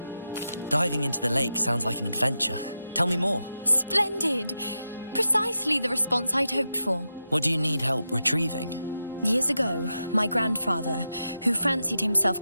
Diving into the lake sounds like an adventure. Tell me more. Splendid! Precisely the response I'd hoped for. What do you need help retrieving? Years ago, my grandfather, who fancied himself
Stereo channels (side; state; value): both; inverted; correlation -0.89